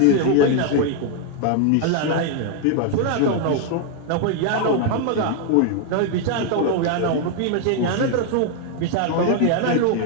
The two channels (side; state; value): both; different; correlation 0.00